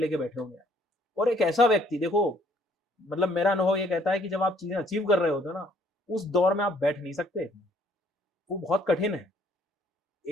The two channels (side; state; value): both; normal; correlation 0.63